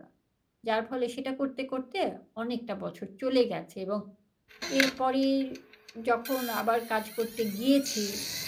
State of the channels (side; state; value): both; identical; correlation 1.00